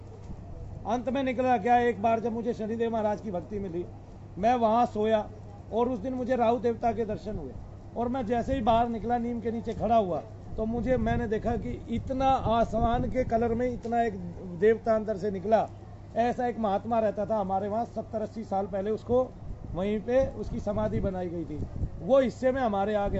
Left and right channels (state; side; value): identical; both; correlation 1.00